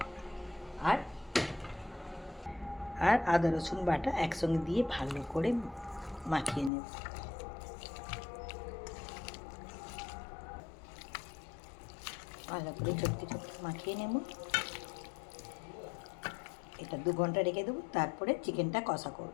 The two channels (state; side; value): drops out; right; at 6.7 s